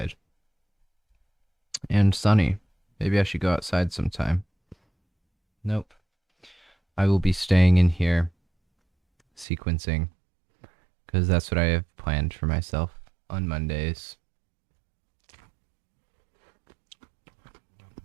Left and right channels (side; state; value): left; drops out; at 9.5 s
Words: And sunny. Maybe I should go outside sometime. Nope. I will be staying in here sequencing, because that's what I have planned for myself on Mondays.